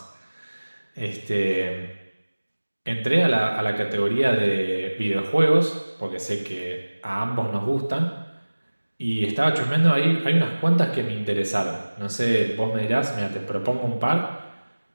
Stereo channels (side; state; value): both; inverted; correlation -1.00